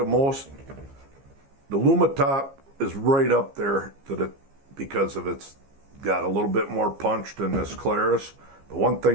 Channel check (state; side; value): late; left; 15 ms